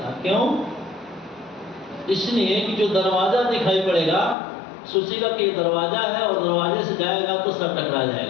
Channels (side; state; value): right; drops out; at 4.4 s